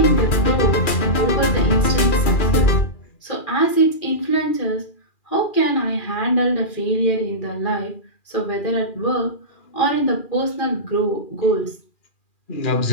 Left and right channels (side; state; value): right; late; 2.4 ms